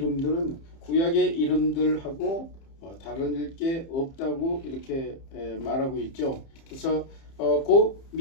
구약의 이름들하고 다른 게 없다고 이렇게 말하고 있죠. 그래서 그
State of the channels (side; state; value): right; late; 30 ms